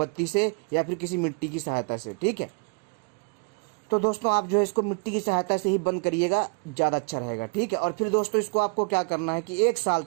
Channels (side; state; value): left; quieter; 32.9 dB